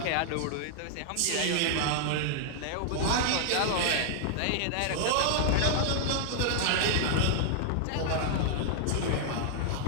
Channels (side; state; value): both; different; correlation 0.00